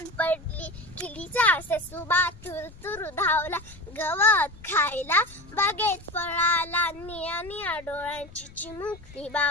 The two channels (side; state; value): left; noise; rumble, 20 dB below the sound